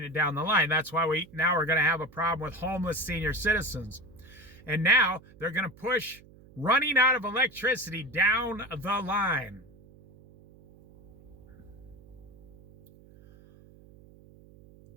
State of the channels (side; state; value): right; noise; hum, 23 dB below the sound